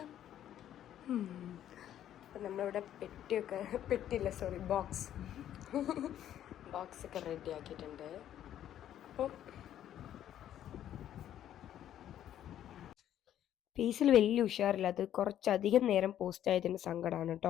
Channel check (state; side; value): quieter; right; 11.2 dB